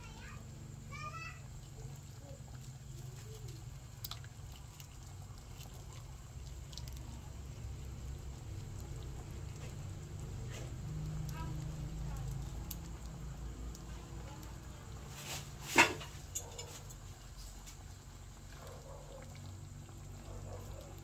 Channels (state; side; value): identical; both; correlation 1.00